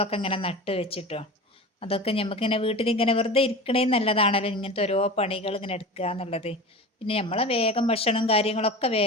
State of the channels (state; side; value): normal; both; correlation 0.31